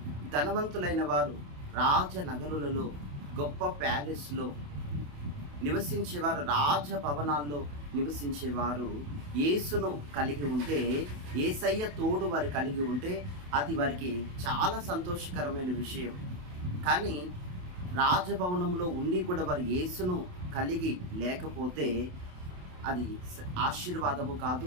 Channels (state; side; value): late; left; 28 ms